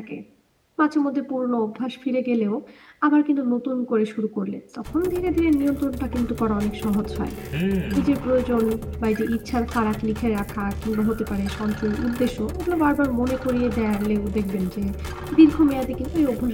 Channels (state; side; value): identical; both; correlation 1.00